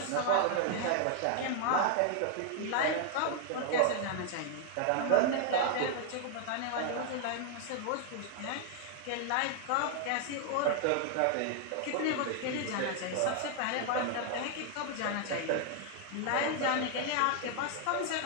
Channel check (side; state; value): both; different; correlation 0.00